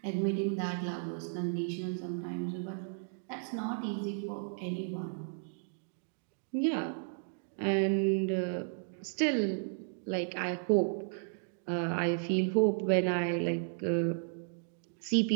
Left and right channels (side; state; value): left; silent; digital silence